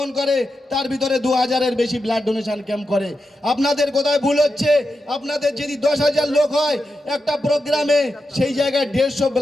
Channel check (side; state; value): both; normal; correlation 0.88